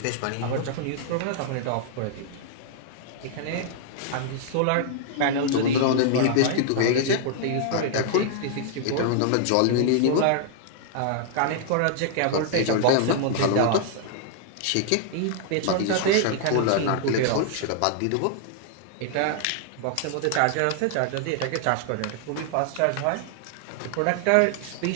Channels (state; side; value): different; both; correlation -0.01